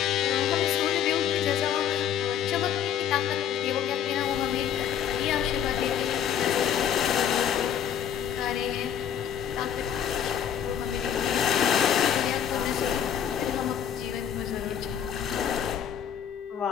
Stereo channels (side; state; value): right; quieter; 9.3 dB